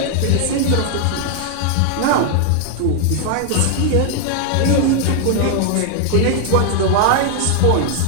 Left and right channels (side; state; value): both; different; correlation 0.00